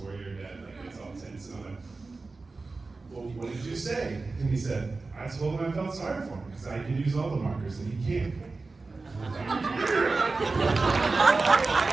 dad, like, gets all tense, and I'm like, well, what did you say? And he said, I told him I felt sorry for him because I can use all the markers and he can't.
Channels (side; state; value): left; quieter; 3.8 dB